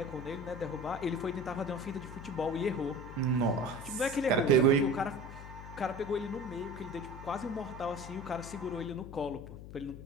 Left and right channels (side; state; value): left; noise; hum, 12 dB below the sound